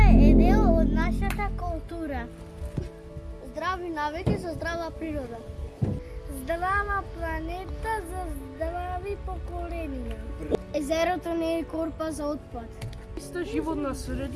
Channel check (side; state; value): both; identical; correlation 1.00